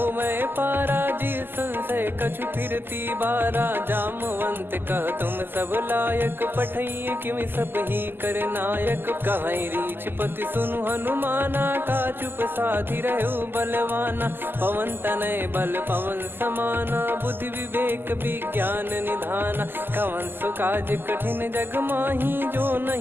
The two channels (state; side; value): late; left; 0.096 ms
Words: मैं पारा जी संशय कछु फिरती बारा जामवंत कह तुम सब लायक पठई किमि सब ही कर नायक कहीं रीछ पति सुनु हनुमाना का चुप साधि रहु बलवाना पवन तनय बल पवन समाना बुद्धि विवेक विज्ञान निधाना कवन सुकाज कठिन जग माही जो